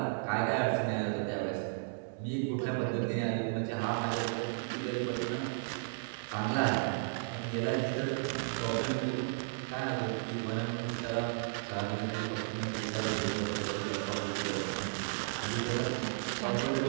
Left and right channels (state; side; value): silent; left; digital silence